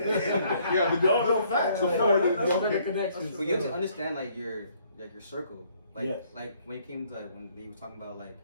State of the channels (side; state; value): both; inverted; correlation -0.65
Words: the facts. That's connections. Well, you have to understand like your circle. Like Yes. like when it came to like, when he was talking about like